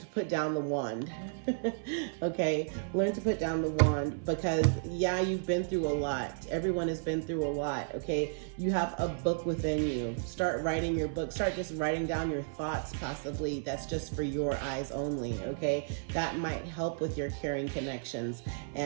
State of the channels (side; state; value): left; silent; 56 dB below the other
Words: put down the wand. Okay, learn to put down the wand, because yeah, you've been through a lot. Everyone has been through a lot. Okay, you have a book within you. Start writing your book. Start just writing down your thoughts, possibly that's just for your eyes only. Okay, that might help with your caring connections,